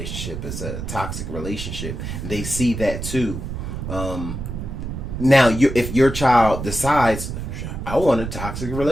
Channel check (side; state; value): right; noise; rumble, 6 dB below the sound